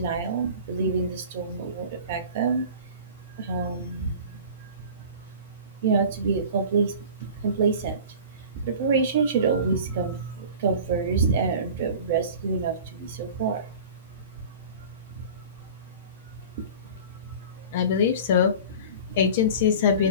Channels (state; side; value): inverted; both; correlation -0.39